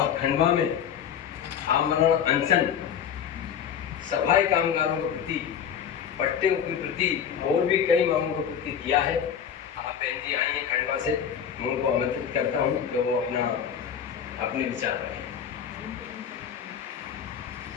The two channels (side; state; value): right; quieter; 8.3 dB